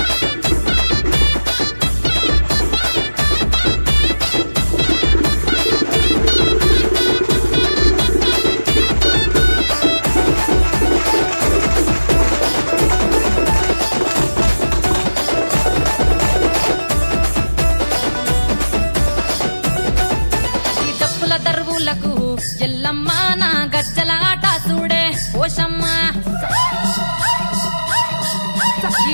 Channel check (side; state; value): both; inverted; correlation -1.00